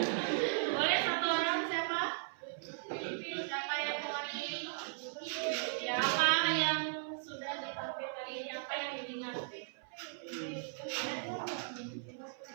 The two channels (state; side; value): silent; left; 53 dB below the other